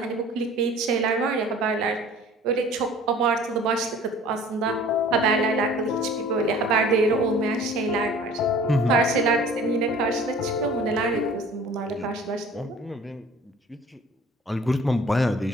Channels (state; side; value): normal; both; correlation 0.48